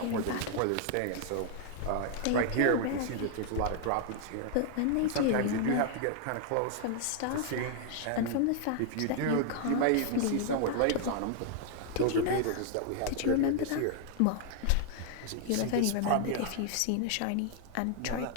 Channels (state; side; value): different; both; correlation 0.00